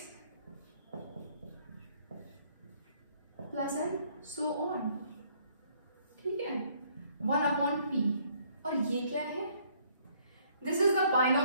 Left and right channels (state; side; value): inverted; both; correlation -0.64